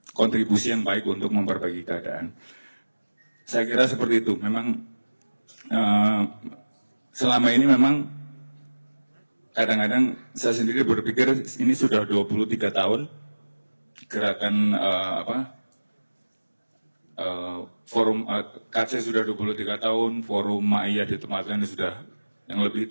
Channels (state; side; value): inverted; both; correlation -1.00